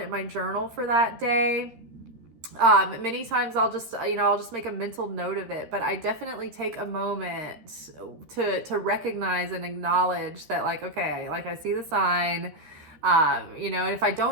my journal for that day. Many times I'll just make a mental note of it, but I definitely take a moment to recognize and acknowledge that, like, okay, like I see the sign, and if I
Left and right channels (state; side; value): late; left; 13 ms